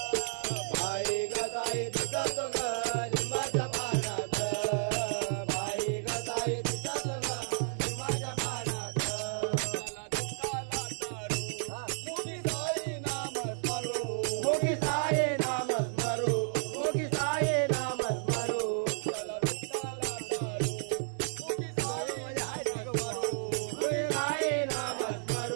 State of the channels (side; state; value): left; silent; digital silence